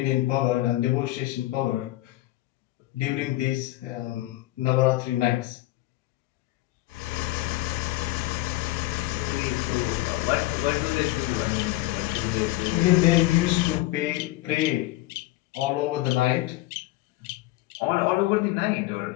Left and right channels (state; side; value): quieter; right; 17.4 dB